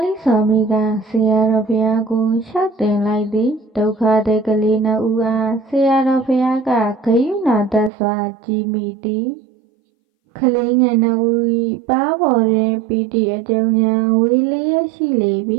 လိစွာမီကဆရာတော်ဘုရားကိုရှောက်တင်လိုက်သည်ဒုက္ခတဲ့ကလေးနှစ်ဦးအားဆရာတော်ဘုရားကဂယုဏတတ်စွာကြည်မိသည်ကလေးငယ်နှစ်ဦး၏ပါးပေါ်တွင်ပီတိအကျုံများဝေလျက်ရှိလေပြီ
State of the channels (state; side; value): drops out; left; at 7.9 s